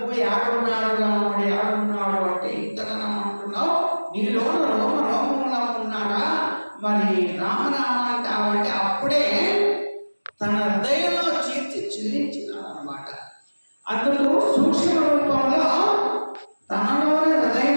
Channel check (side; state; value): both; inverted; correlation -1.00